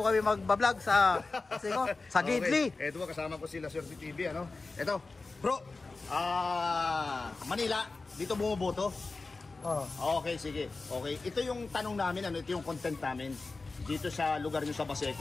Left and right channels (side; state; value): right; quieter; 3.7 dB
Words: kami magbablog sa Gidli. Okay. Ito kasama ko sila Sir TV, ano? Ito, bro. Manila, dito bumuboto. Okay, sige. Okay, ito yung tanong namin, ano? Ito yung content namin. Dito sa lugar nyo sa